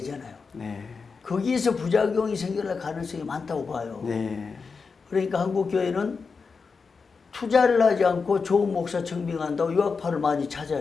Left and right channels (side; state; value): right; quieter; 5.0 dB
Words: 네. 거기에서 부작용이 생겨날 가능성이 많다고 봐요. 네. 그러니까 한국 교회는 투자를 하지 않고 좋은 목사 청빙한다고 유학파를 많이